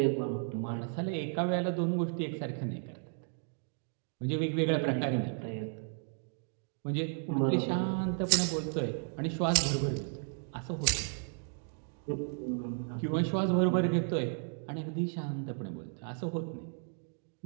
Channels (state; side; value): silent; left; 55 dB below the other